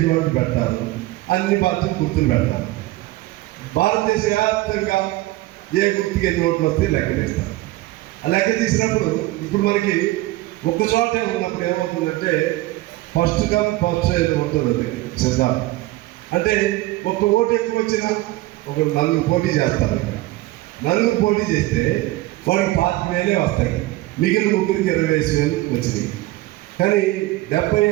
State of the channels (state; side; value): quieter; left; 18.3 dB